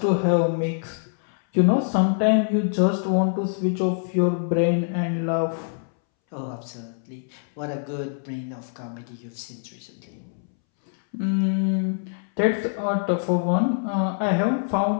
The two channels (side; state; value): right; silent; 62 dB below the other